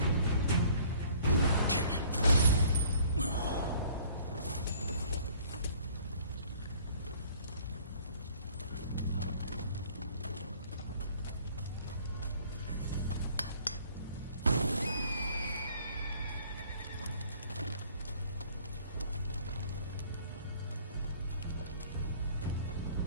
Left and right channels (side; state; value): both; inverted; correlation -0.55